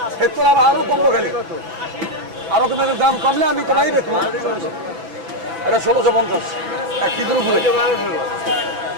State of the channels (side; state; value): left; late; 6.0 ms